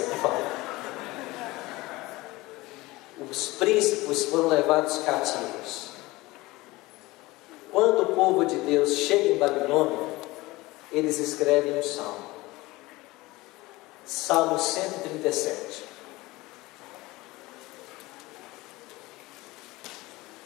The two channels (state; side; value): quieter; right; 20.5 dB